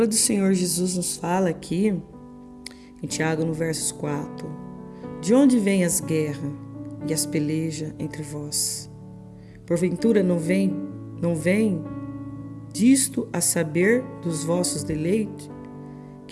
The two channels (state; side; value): identical; both; correlation 1.00